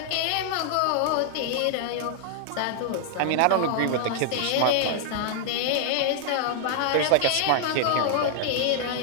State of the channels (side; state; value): both; different; correlation 0.00